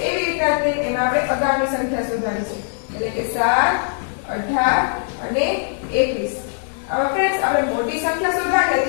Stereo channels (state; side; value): silent; right; digital silence